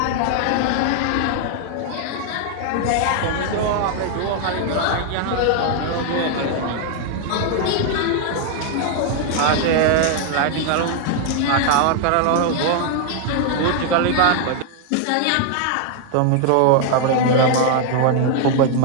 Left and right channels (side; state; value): both; different; correlation 0.00